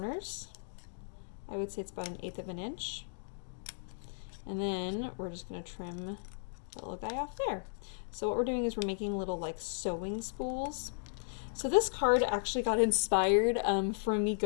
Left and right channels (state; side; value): silent; right; digital silence